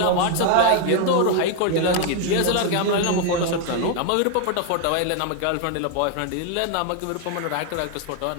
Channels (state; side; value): different; both; correlation 0.01